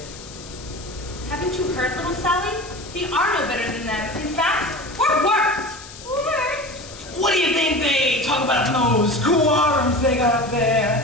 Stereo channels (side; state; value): left; noise; hiss, 16 dB below the sound